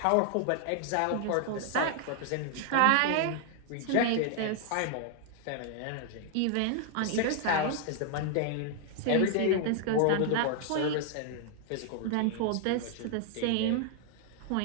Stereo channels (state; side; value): different; both; correlation 0.00